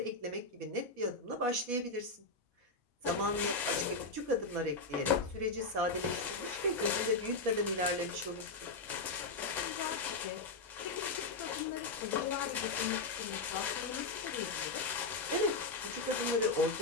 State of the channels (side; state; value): right; quieter; 3.5 dB